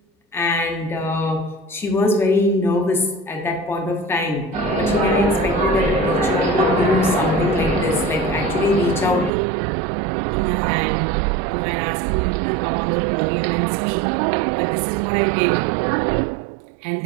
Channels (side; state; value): left; drops out; at 9.3 s